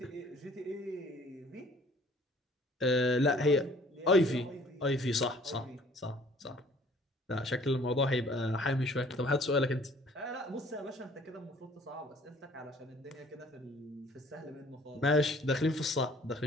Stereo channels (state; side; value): normal; both; correlation 0.55